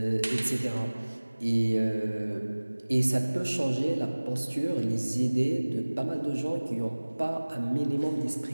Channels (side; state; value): both; inverted; correlation -1.00